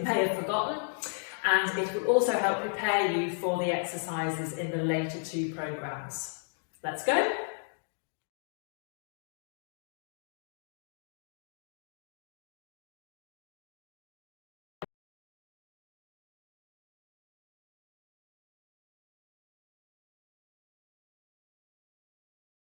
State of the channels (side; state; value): right; silent; digital silence